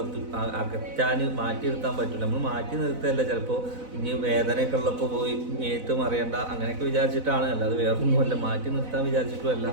മാറ്റി നിർത്താൻ പറ്റില്ല. നമ്മൾ മാറ്റി നിർത്തല്ല, ചിലപ്പോൾ ഇനി വേദനയൊക്കെ ഉള്ളപ്പോൾ പോയി മേത്തും അറിയണ്ട അങ്ങനെയൊക്കെ വിചാരിച്ചിട്ടാണ്. അല്ലാതെ വേറൊന്നുമല്ല, മാറ്റി നിർത്താൻ വിചാരിച്ചിട്ടുമല്ല.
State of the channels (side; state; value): left; late; 4.0 ms